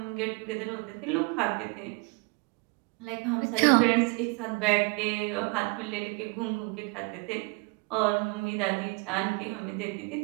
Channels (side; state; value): left; quieter; 29.4 dB